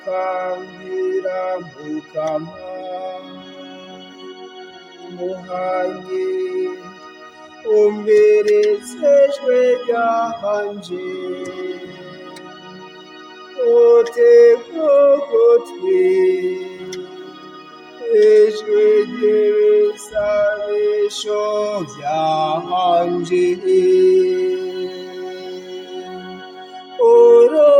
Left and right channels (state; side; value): identical; both; correlation 1.00